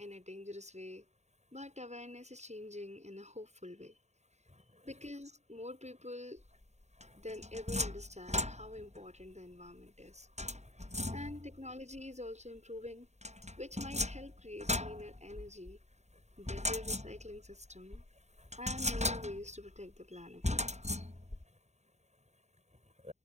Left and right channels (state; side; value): late; left; 0.33 ms